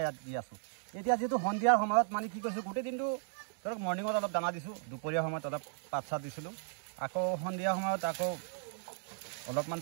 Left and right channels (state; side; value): silent; left; 54 dB below the other